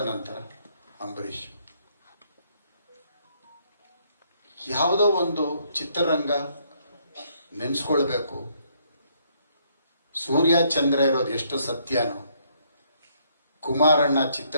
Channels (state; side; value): inverted; both; correlation -0.69